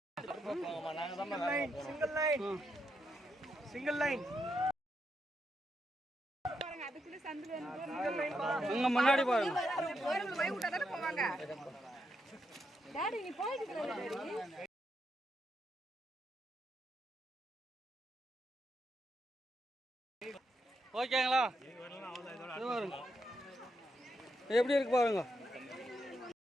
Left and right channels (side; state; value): both; normal; correlation 0.82